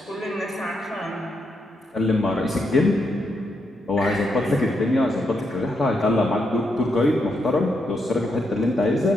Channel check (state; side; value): normal; both; correlation 0.81